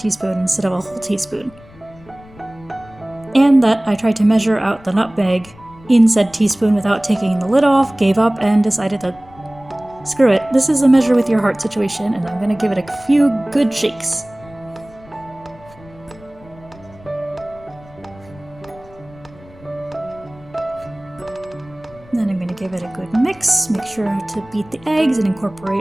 instead of a whole teaspoon. And that I tried to measure out the nutmeg in said teaspoon without taking the lid off, gave up, and decided that screw it, this is a measure with your heart situation, and I'm gonna give it a few good shakes. Then I'm gonna give it a good mix, make sure to beat the eggs and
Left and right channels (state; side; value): noise; left; rumble, 23 dB below the sound